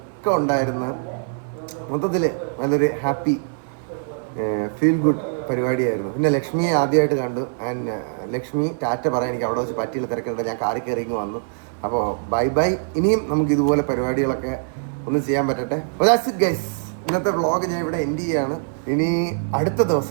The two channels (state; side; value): silent; left; digital silence